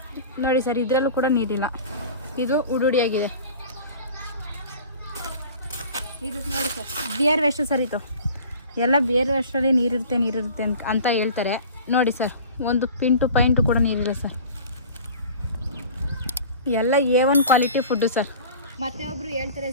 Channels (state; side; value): inverted; both; correlation -0.42